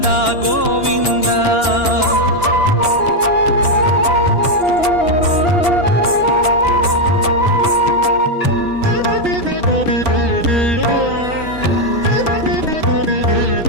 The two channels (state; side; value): late; right; 2.9 ms